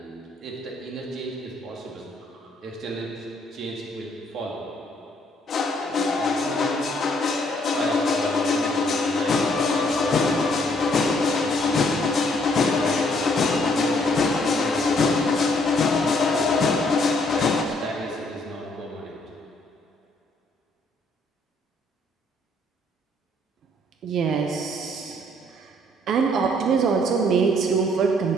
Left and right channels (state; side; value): normal; both; correlation 0.66